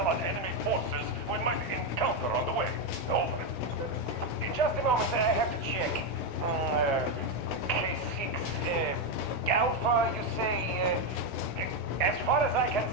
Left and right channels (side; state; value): right; late; 16 ms